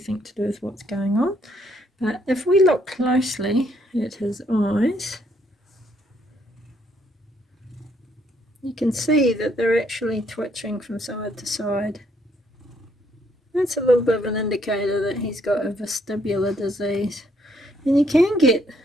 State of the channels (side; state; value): both; normal; correlation 0.70